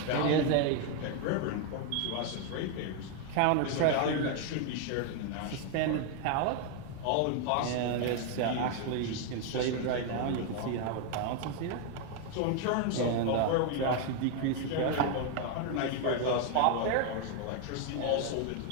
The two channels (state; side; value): different; both; correlation 0.01